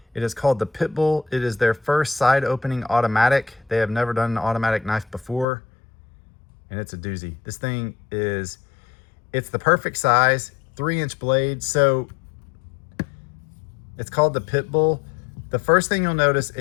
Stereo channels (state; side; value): drops out; right; at 5.5 s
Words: It is called the Pitbull. It is their first side opening automatic. They have never done an automatic knife before, and it's a doozy. This thing is, it's the perfect size, 3-inch blade. So it's called the Pitbull. The first thing you'll notice,